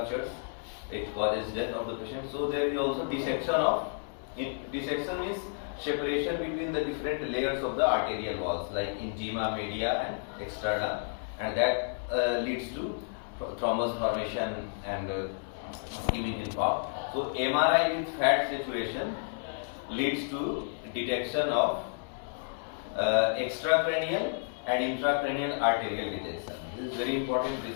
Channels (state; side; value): silent; right; 57 dB below the other